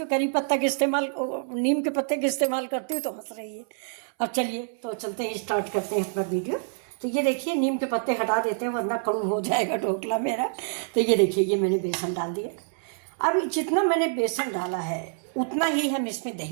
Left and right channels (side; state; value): left; silent; 60 dB below the other